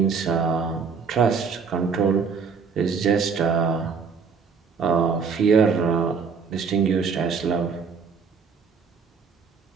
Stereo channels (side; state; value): left; quieter; 5.7 dB